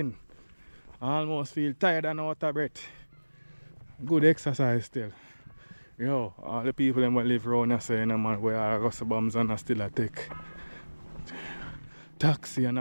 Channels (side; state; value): both; inverted; correlation -1.00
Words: I almost feel tired and out of breath. Good exercise still. Yo, all the people that live around here say, you know, man, where I go to bombs and I still a take taxi and